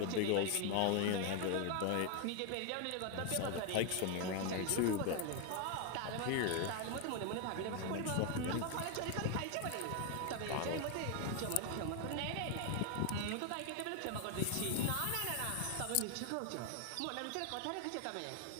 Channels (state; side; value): different; both; correlation 0.01